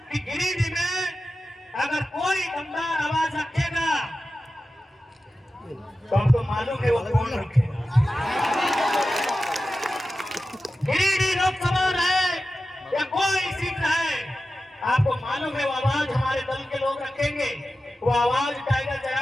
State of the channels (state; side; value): normal; both; correlation 0.93